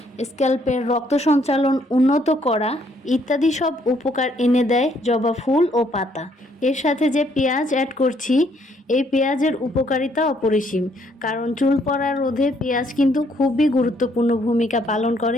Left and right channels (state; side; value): normal; both; correlation 0.68